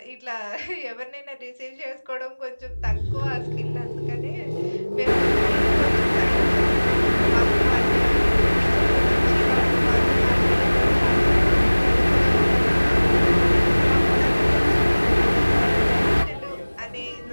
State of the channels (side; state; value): both; inverted; correlation -1.00